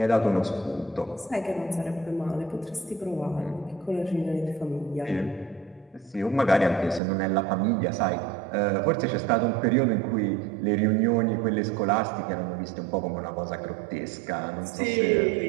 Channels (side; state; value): left; drops out; at 7.0 s